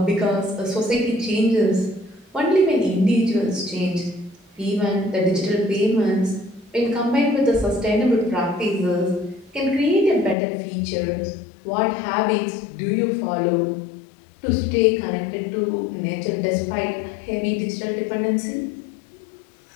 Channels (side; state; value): right; drops out; at 10.4 s